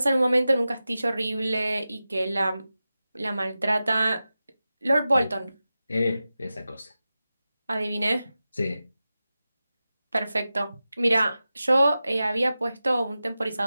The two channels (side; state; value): both; inverted; correlation -0.94